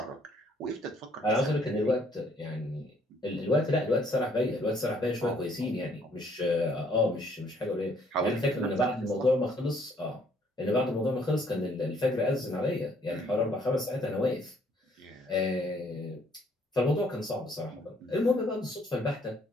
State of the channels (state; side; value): normal; both; correlation 0.64